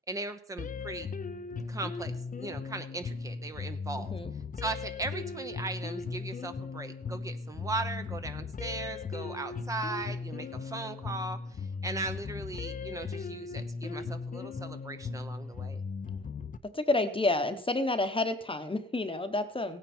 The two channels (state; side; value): normal; both; correlation 0.48